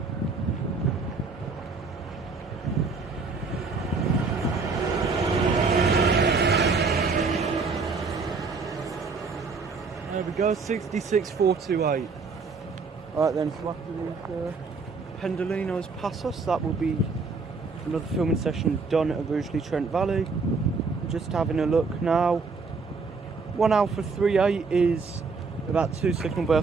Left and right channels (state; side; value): quieter; left; 4.5 dB